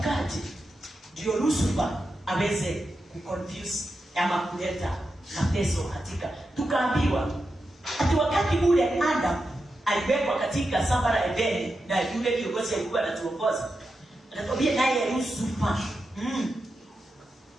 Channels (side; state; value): both; normal; correlation 0.89